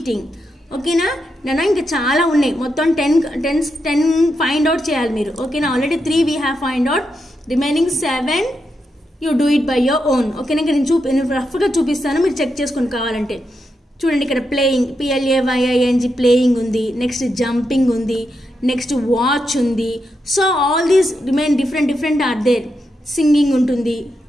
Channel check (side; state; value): both; normal; correlation 0.85